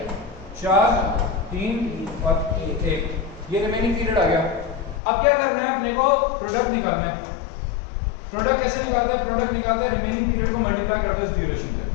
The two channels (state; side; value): drops out; right; at 5.0 s